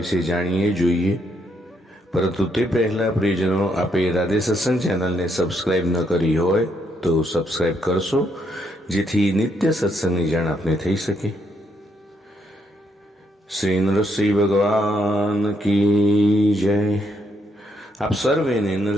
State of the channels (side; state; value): both; normal; correlation 0.76